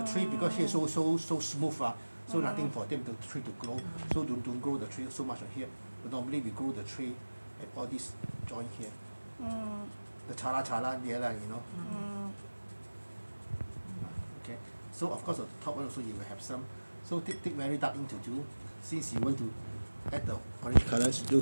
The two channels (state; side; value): inverted; both; correlation -1.00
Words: tree, because here so smooth, so nothing for them the tree to grow. So don't grow the tree so much here. But normally we grow the tree at all this joint here. The chala there lah, you know. Okay. So of course the top one also you will have some. So take very dark ink to do. Since you want to add the orange colors,